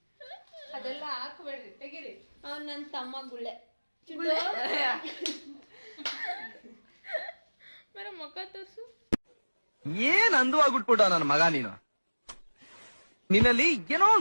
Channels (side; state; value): both; inverted; correlation -1.00